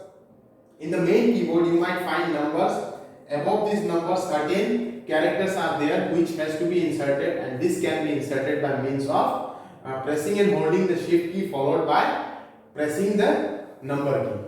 in the main keyboard, you might find numbers. Above these numbers, certain characters are there which has to be inserted, and this can be inserted by means of pressing and holding the shift key followed by pressing the number key.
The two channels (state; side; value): identical; both; correlation 1.00